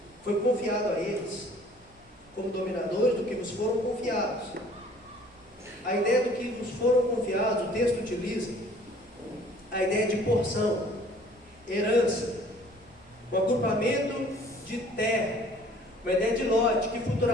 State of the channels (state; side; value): noise; right; hum, 30 dB below the sound